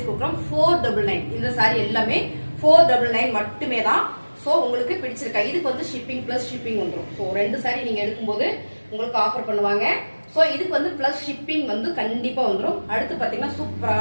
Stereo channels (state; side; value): inverted; both; correlation -1.00